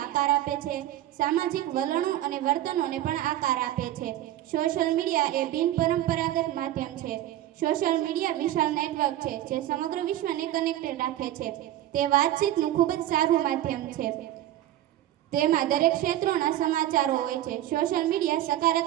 આપે છે, સામાજિક વલણો અને વર્તનોને પણ આકાર આપે છે. સોશિયલ મીડિયા એ બિનપરંપરાગત માધ્યમ છે. સોશિયલ મીડિયા વિશાળ નેટવર્ક છે, જે સમગ્ર વિશ્વને કનેક્ટેડ રાખે છે. તે વાતચીતનું ખૂબ જ સારું માધ્યમ છે. તેમાં દરેક ક્ષેત્રોના સમાચારો હોય છે. સોશિયલ મીડિયા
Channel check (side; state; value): left; quieter; 13.4 dB